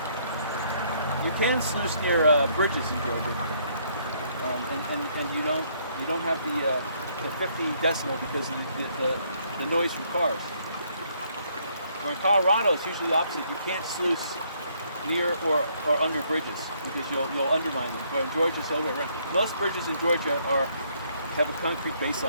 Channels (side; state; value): both; inverted; correlation -0.68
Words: You can sluice near bridges in Georgia, and you don't have the 50 decimal because of the noise from cars. Where in Colorado, it's usually the opposite. You can't sluice near or under bridges because you'll undermine them. But in Georgia, it's the other way around. Most bridges in Georgia have a concrete base